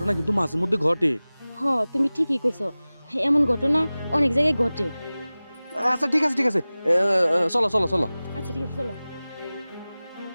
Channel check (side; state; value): both; inverted; correlation -0.98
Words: কিন্তু মাঝে মধ্যে ঘটে। হ তুমি ঠিকই কইছো, এমন ঘটনা অনেক জায়গায় ঘটে। আচ্ছা ঠিক আছে ঠিক আছে, চলো চলো চলো। আচ্ছা ঠিক আছে চলো।